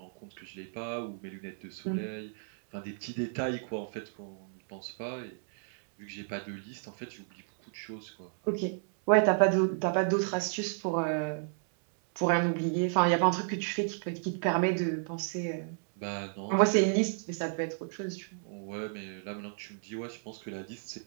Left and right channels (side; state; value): left; silent; 56 dB below the other